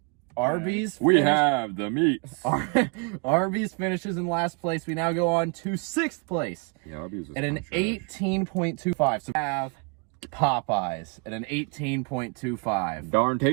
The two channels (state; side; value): quieter; left; 33.0 dB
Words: Arby's. We have the meats. Arby's finishes in last place. We now go on to 6th place Yeah, Arby's was at an kinda trash. 18.25. So we have Popeyes at an 18.25. Darn